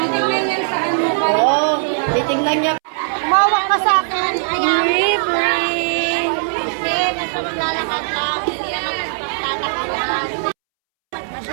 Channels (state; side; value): silent; left; 67 dB below the other